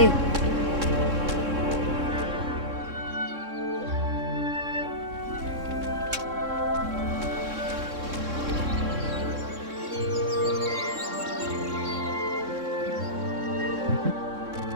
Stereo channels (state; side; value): late; left; 3.6 ms